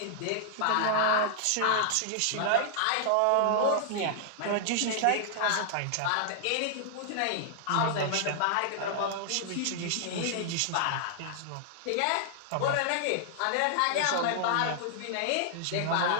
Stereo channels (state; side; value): different; both; correlation -0.01